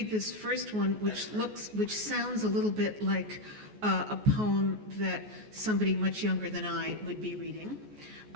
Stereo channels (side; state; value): left; late; 14 ms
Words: this first one, which sounds a little bit like a poem that somebody much younger than I would be reading,